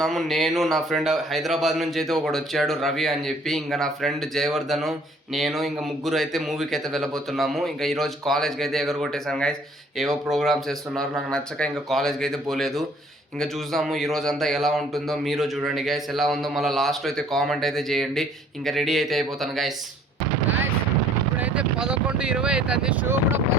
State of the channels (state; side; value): normal; both; correlation 0.58